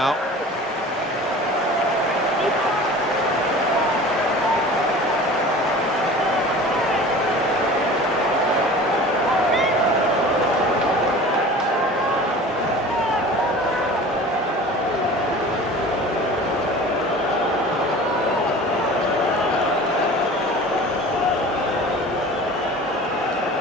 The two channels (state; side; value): normal; both; correlation 0.40